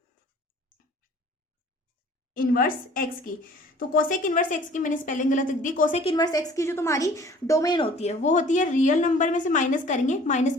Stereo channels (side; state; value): both; normal; correlation 0.51